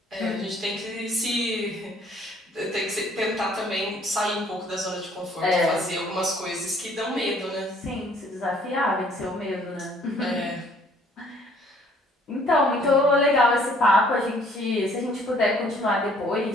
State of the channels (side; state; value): both; normal; correlation 0.60